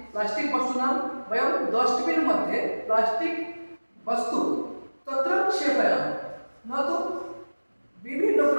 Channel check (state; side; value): inverted; both; correlation -1.00